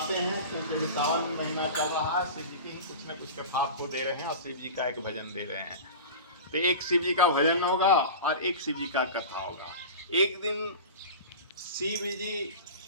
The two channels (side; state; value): both; inverted; correlation -0.32